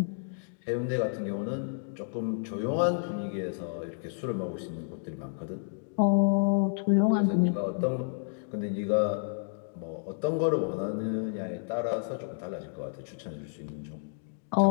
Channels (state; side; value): silent; right; digital silence